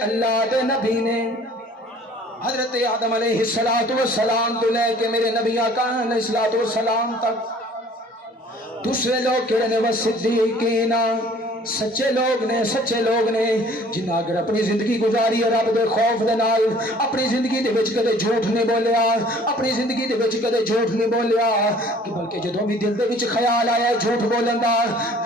اللہ دے نبی نے حضرت آدم علیہ السلام تو لے کے میرے نبی آقا علیہ السلام تک دوسرے لوگ کہڑے نے وہ صدیقین سچے لوگ نے جنہاں اگر اپنی زندگی گزاری ہے رب دے خوف دے نال اپنی زندگی دے وچ کدے جھوٹ نہیں بولیا اپنی زندگی دے وچ کدے جھوٹ نہیں بولیا کہ بلکہ جدوں بھی دل دے وچ خیال آیا جھوٹ بولن دا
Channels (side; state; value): both; normal; correlation 0.52